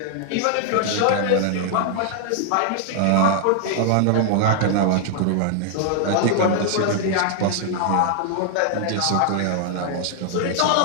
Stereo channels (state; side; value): different; both; correlation 0.00